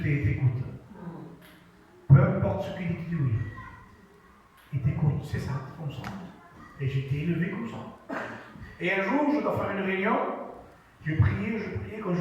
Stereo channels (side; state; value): both; identical; correlation 1.00